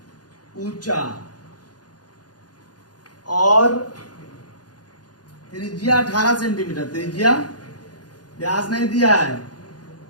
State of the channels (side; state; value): right; late; 0.69 ms